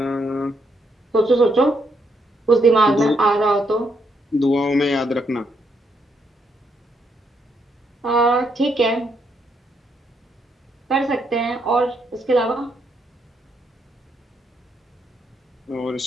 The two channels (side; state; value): both; normal; correlation 0.76